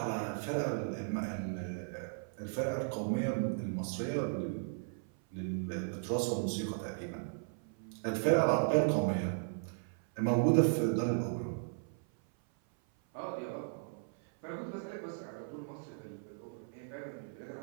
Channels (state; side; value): silent; left; 54 dB below the other